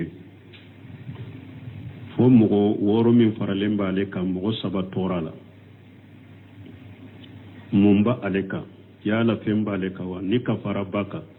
fo mogo woro min faralemba ale ka mogo saba torala mumba ale ka yala femba ale ka wa ni kafara baka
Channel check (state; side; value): identical; both; correlation 1.00